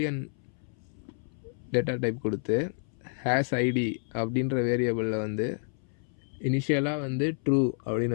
டேட்டா டைப் கொடுத்து ஹேஸ் ஐடி அப்படின்ற வேரியபிளில் வந்து இனிஷியலாக வந்து ட்ரூ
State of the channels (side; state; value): right; silent; 58 dB below the other